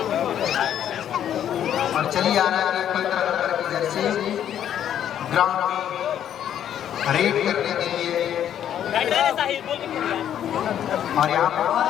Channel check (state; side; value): quieter; right; 10.1 dB